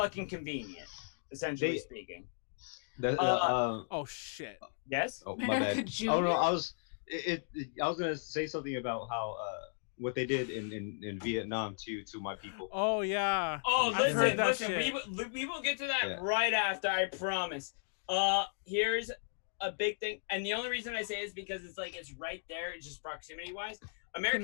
convenient, essentially speaking. Oh shit. Yes? Oh, my America bad. Junior? Oh no, I was gonna say something about how what they did in Vietnam to my people. Oh yeah. Oh, I've heard listen, that we will get to that Yeah. right after, I promise. Here's a big thing, and the only reason I say is because it's right there, it's just proximity-wise.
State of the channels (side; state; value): right; silent; digital silence